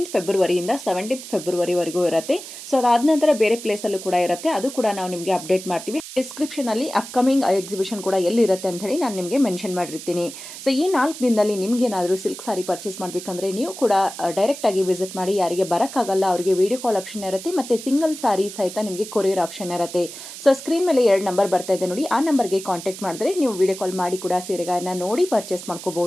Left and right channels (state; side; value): noise; right; hiss, 12 dB below the sound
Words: ಫೆಬ್ರವರಿಯಿಂದ 17th ಫೆಬ್ರವರಿವರೆಗೂ ಇರುತ್ತೆ. ಸೊ ಅದಾದ ನಂತರ ಬೇರೆ ಪ್ಲೇಸಲ್ಲೂ ಕೂಡ ಇರುತ್ತೆ. ಅದು ಕೂಡ ನಾವು ನಿಮಗೆ ಅಪ್ಡೇಟ್ ಮಾಡ್ತೀವಿ. ಡಿಸ್ಕ್ರಿಪ್ಷನಲ್ಲಿ ಅಪ್ಕಮಿಂಗ್ ಎಕ್ಸಿಬಿಷನ್ ಕೂಡ ಎಲ್ಲಿರುತ್ತೆ ಅಂತ ಹೇಳಿ ನಾನು ನಿಮಗೆ ಮೆನ್ಷನ್ ಮಾಡಿರ್ತೀನಿ. ಸೊ ಈ 4 ದಿನದಲ್ಲಿ ನಿಮಗೇನಾದರೂ ಸಿಲ್ಕ್ ಸಾರಿ ಪರ್ಚೇಸ್ ಮಾಡಬೇಕಂದ್ರೆ ನೀವು ಕೂಡ ಡೈರೆಕ್ಟಾಗಿ ವಿಸಿಟ್ ಮಾಡಿ. ಯಾರಿಗೆ ಬರೋಕ್ಕಾಗಲ್ಲ ಅವರಿಗೆ ವಿಡಿಯೋ ಕಾಲ್ ಆಪ್ಷನ್ ಇರುತ್ತೆ, ಮತ್ತು ಸಿಂಗಲ್ ಸಾರಿ ಸಹಿತ ನಿಮಗೆ ಕೊರಿಯರ್ ಆಪ್ಷನ್ ಇರುತ್ತೆ. ಸೊ ಸ್ಕ್ರೀನ್ ಮೇಲೆ 2 ನಂಬರ್ ಬರ್ತಾ ಇದೆ ನೋಡಿ, ಆ ನಂಬರ್ಗೆ ಕಾಂಟ್ಯಾಕ್ಟ್ ಮಾಡಿದ್ರೆ ನೀವು ವಿಡಿಯೋ ಕಾಲ್ ಮಾಡಿ ಕೂಡ ಸೀರೆಗಳನ್ನು ನೋಡಿ ಪರ್ಚೇಸ್